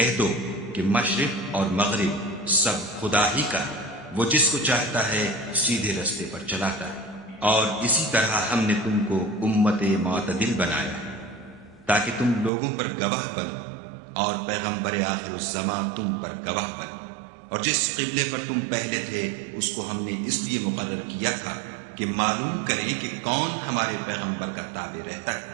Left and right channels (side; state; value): left; drops out; at 12.5 s